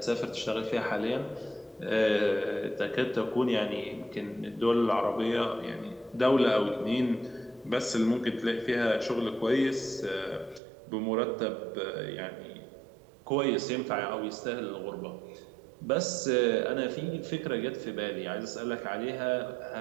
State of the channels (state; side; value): drops out; left; at 10.6 s